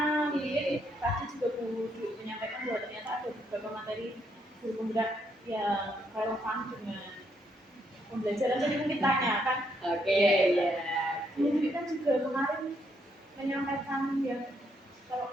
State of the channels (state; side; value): normal; both; correlation 0.74